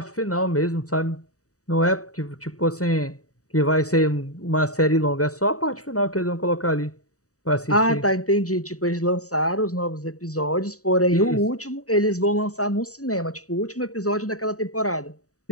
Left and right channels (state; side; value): late; right; 0.66 ms